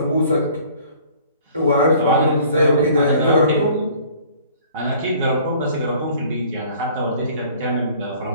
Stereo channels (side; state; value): both; inverted; correlation -0.53